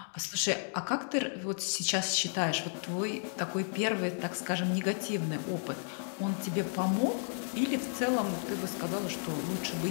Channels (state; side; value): silent; right; 56 dB below the other